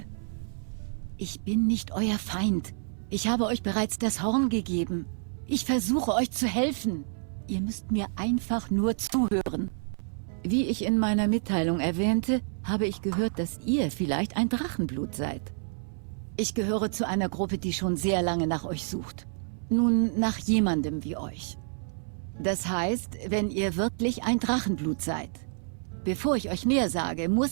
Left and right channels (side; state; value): left; silent; 59 dB below the other